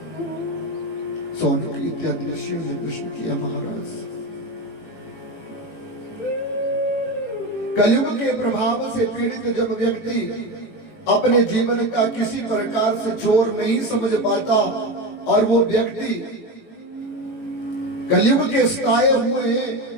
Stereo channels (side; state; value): right; late; 18 ms